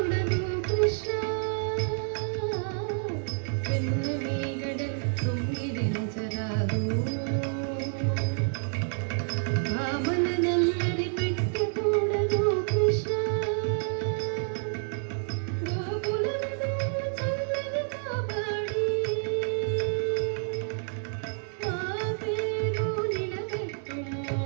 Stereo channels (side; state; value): left; silent; digital silence